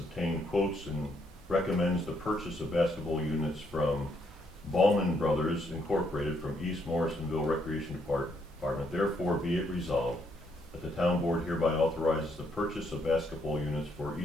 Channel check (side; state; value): both; normal; correlation 0.73